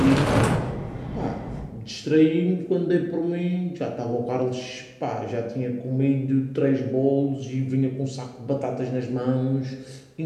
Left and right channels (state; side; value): identical; both; correlation 1.00